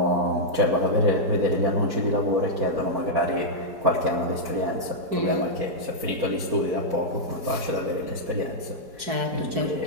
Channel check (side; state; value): left; late; 4.2 ms